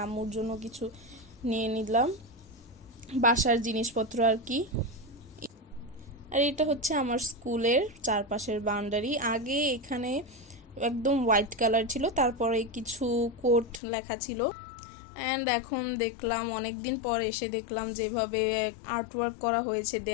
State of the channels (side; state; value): right; drops out; at 13.8 s